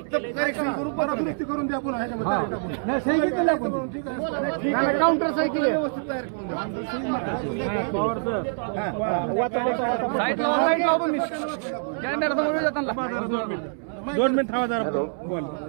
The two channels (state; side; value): silent; left; 61 dB below the other